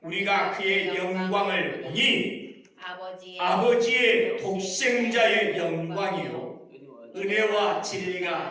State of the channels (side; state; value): both; identical; correlation 1.00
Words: 우리가 그의 영광을 보니 아버지의 독생자의 영광이요 은혜와